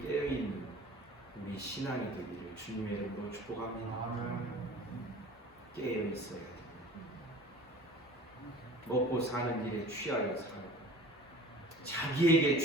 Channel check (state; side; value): normal; both; correlation 0.42